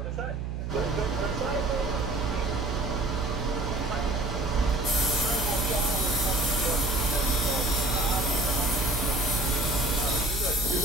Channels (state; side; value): noise; right; hum, 4 dB below the sound